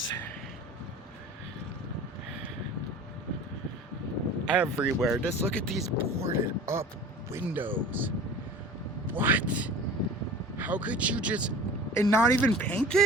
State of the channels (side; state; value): both; normal; correlation 0.40